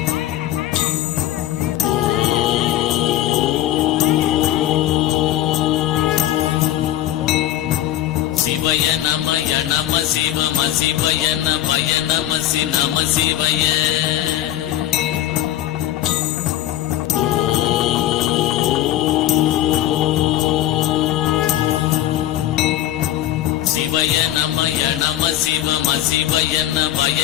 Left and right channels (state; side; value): quieter; right; 13.2 dB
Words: சிவய நமய நம சிவம சிவய நமய